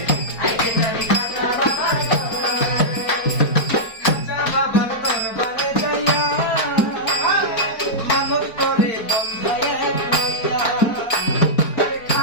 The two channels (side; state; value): right; late; 4.4 ms